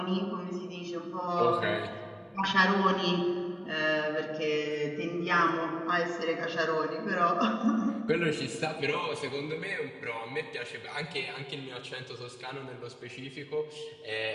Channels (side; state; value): both; identical; correlation 1.00